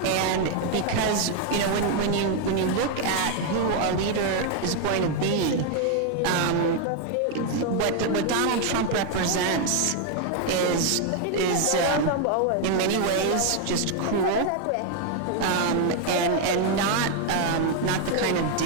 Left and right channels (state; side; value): different; both; correlation 0.01